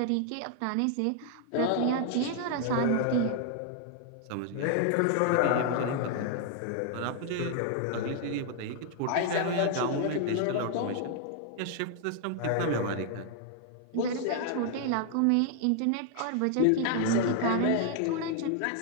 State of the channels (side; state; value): both; different; correlation 0.00